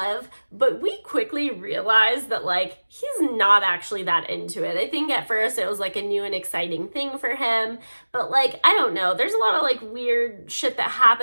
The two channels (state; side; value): inverted; both; correlation -1.00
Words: but we quickly realize that like he's not actually that into it. I think at first it was like a new and exciting thing for him, but like, I don't know, there's a lot of like weird shit that